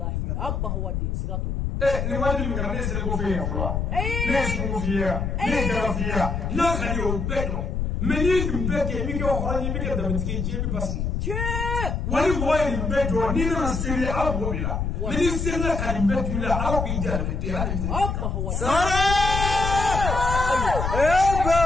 abba hawadi sigatola ni wadi mi ga ne se ko fe ya fo ne se ko fe ya ne ga fe ya na ga yo bedo me ni mbe ke mi ke hore ni mi ke da mi ke je bi basi che wali boy ni bedo ni na sere abo bila me ni se na ka ni bedo la abo bi da me te hali abba hawadi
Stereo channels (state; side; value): noise; left; rumble, 1 dB below the sound